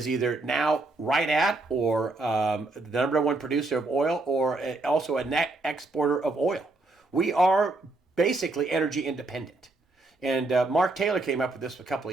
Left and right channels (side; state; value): left; quieter; 3.1 dB